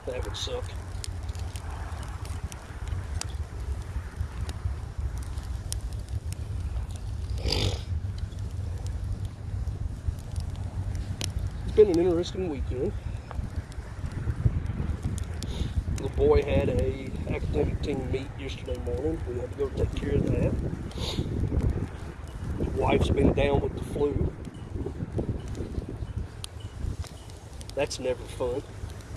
That would suck. It's been an interesting weekend. The boy had a academic team meet yesterday morning. We had to go take care of that. His wife's been down with the flu. That's never fun.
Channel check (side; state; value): both; identical; correlation 1.00